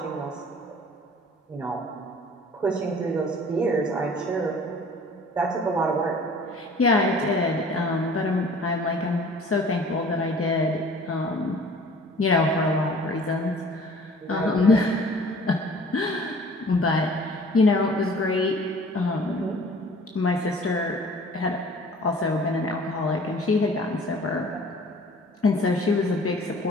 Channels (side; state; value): both; normal; correlation 0.49